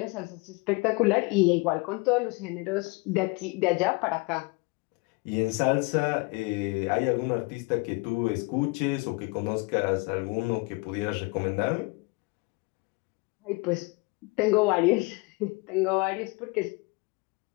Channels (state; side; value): quieter; right; 27.0 dB